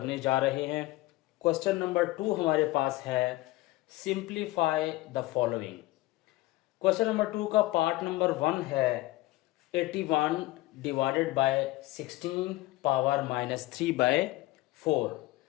जा रहे हैं। क्वेश्चन नंबर 2 हमारे पास है simplify the following. Question number 2 का पार्ट नंबर 1 है 81 divided by 16 power minus 3 by 4।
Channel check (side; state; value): right; quieter; 18.5 dB